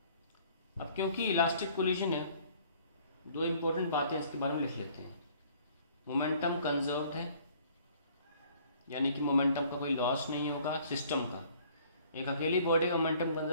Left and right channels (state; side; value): inverted; both; correlation -0.57